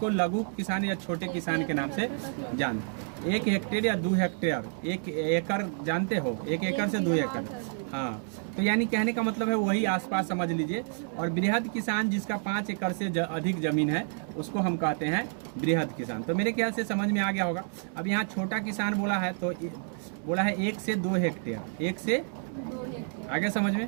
लघु किसान या छोटे किसान के नाम से जानते हैं। 1 हेक्टेयर या 2 हेक्टेयर, 1 एकड़ जानते हो, 1 एकड़ से 2 एकड़। हाँ, तो यानी कहने का मतलब है वही आसपास समझ लीजिए। और बृहद किसान जिसका 5 एकड़ से अधिक जमीन है, उसको हम कहते हैं बृहद किसान। तो मेरे ख्याल से समझ में आ गया होगा। अब यहाँ छोटा किसान बोला है तो बोला है 1 से 2 हेक्टेयर, 1 से 2 हेक्टेयर। आगे समझ में।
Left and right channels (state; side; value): silent; left; 58 dB below the other